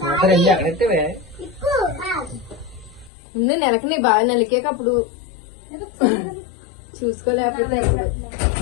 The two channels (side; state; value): right; drops out; at 3.1 s